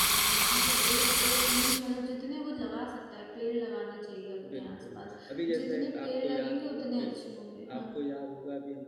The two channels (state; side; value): identical; both; correlation 1.00